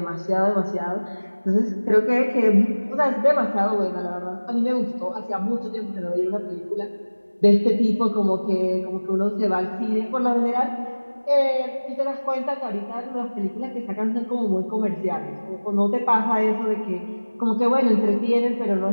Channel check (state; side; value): inverted; both; correlation -1.00